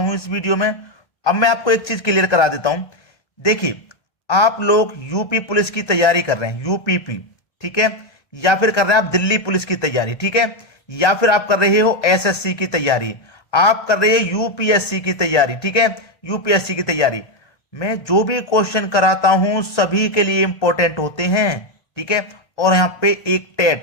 इस वीडियो में। अब मैं आपको एक चीज क्लियर करा देता हूं। देखिए, आप लोग यूपी पुलिस की तैयारी कर रहे हैं, यूपीपी, ठीक है, या फिर कर रहे हैं आप दिल्ली पुलिस की तैयारी, ठीक है, या फिर आप कर रहे हो एसएससी की तैयारी, आप कर रहे हो यूपीएससी की तैयारी, ठीक है, यूपीएससी की तैयारी। मैं जो भी क्वेश्चन कराता हूं सभी के लिए इंपॉर्टेंट होते हैं, ठीक है। और यहां पे एक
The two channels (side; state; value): right; late; 1.3 ms